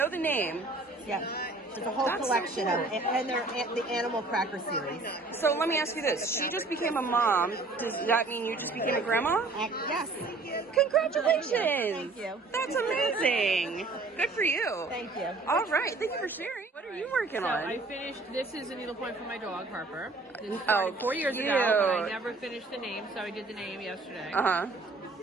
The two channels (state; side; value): quieter; left; 3.5 dB